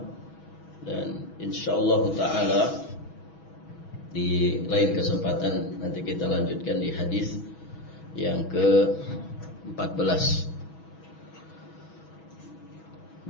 Dan insyaallah ta'ala di lain kesempatan nanti kita lanjutkan di hadis yang ke-14.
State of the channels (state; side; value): late; right; 6.2 ms